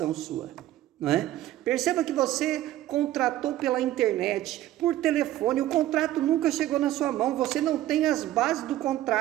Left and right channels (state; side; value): quieter; left; 14.1 dB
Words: sua, não é? Perceba que você contratou pela internet, por telefone, o contrato nunca chegou na sua mão, você não tem as bases do